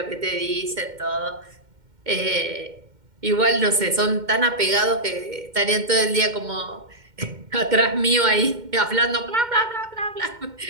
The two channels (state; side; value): late; left; 2.1 ms